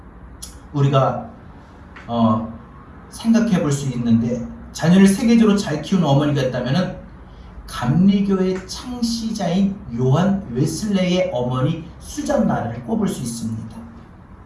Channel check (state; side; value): identical; both; correlation 1.00